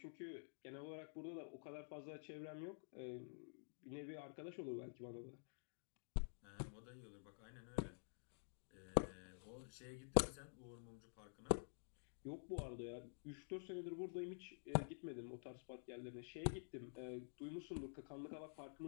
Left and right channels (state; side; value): silent; right; digital silence